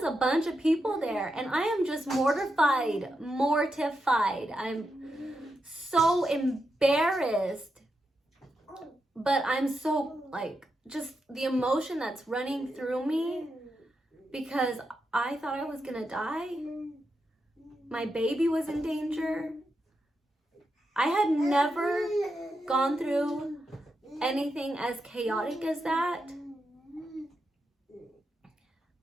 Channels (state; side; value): normal; both; correlation 0.86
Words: a bunch of people there, and I am just mortified. I'm so embarrassed But I'm so, like, just the emotion that's running through me because I thought I was gonna die. My baby was in danger. I had never gone through anything as chaotic as that.